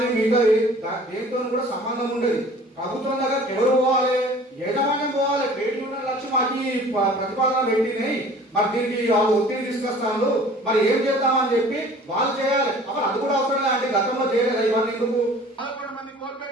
మిగతా దేనితో కూడా సంబంధం ఉండదు. ప్రభుత్వం దగ్గర ఎవరు పోవాలి? యజమాన్యం పోవాలి. ట్రేడ్ యూనియన్ లక్ష్యం మాకు ప్రతిపాదన పెట్టినాయి, మరి దీనికి వాళ్ళు ఒత్తిడి తీసుకొస్తాను, మరి ఏం చేద్దామని చెప్పి వాళ్ళు చేయాలి. అప్పుడు అది కూడా అవసరం లేదు. గతంలో చేయలేదు ఇవన్నీ ఎందుకు? 11 మంది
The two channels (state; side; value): normal; both; correlation 0.48